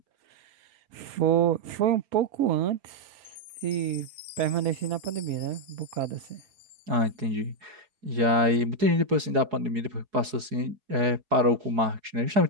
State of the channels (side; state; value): left; late; 4.7 ms